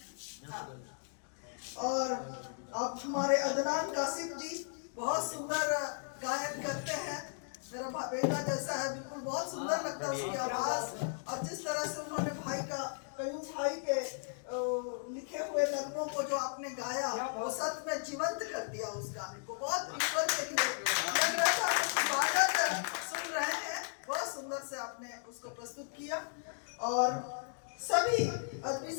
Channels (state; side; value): silent; right; digital silence